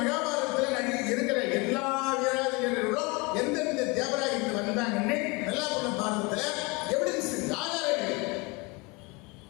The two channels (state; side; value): quieter; right; 26.9 dB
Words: மகாபாரதத்துல இருக்கிற எல்லா வீராதிகளும் எந்தெந்த தேவராக இருந்து வந்தாங்கன்னு நல்லா பண்ண பாரதத்துல எவிடன்ஸ் ஆதாரங்கள்.